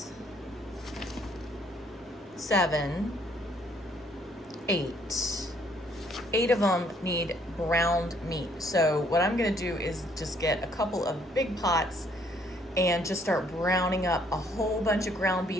7, 8. 8 of them need browned meat. So what I'm gonna do is just get a couple of big pots and just start browning up a whole bunch of ground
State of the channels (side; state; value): both; normal; correlation 0.65